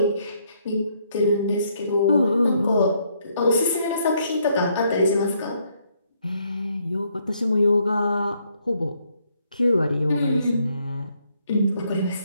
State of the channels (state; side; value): inverted; both; correlation -0.71